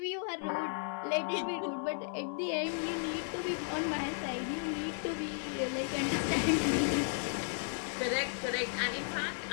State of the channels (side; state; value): right; silent; 55 dB below the other